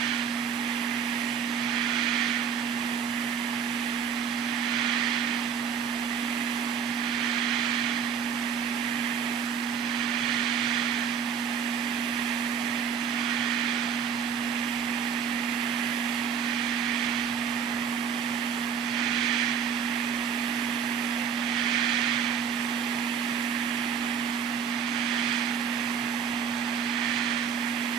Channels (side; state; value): left; quieter; 7.6 dB